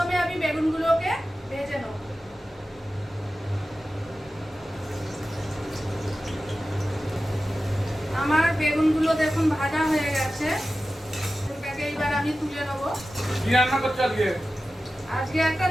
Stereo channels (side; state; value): both; normal; correlation 0.94